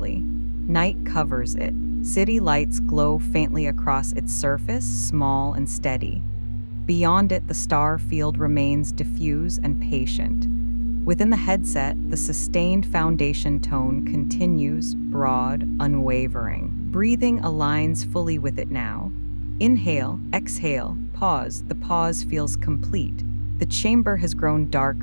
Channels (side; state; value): both; inverted; correlation -1.00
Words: Night covers it. City lights glow faintly across its surface, small and steady. Beyond it, the star field remains diffuse and patient. Within the headset, the sustained foundation tone continues, broad, unwavering. Breathing aligns fully with it now. Inhale, exhale, pause. The pause feels complete. The chamber has grown